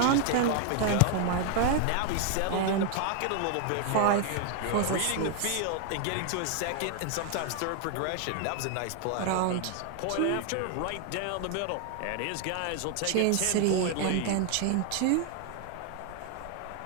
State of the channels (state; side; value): different; both; correlation 0.00